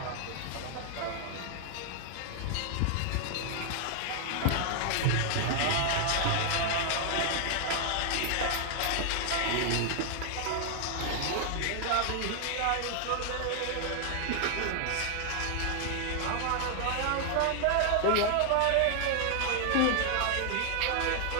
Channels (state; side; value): different; both; correlation 0.00